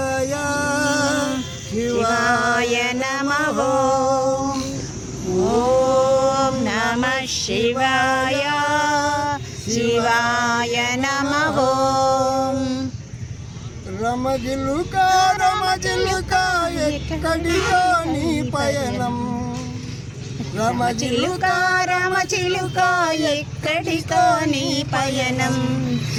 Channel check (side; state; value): both; identical; correlation 1.00